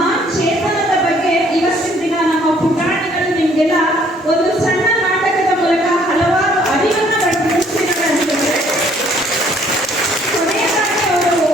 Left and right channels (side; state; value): both; normal; correlation 0.62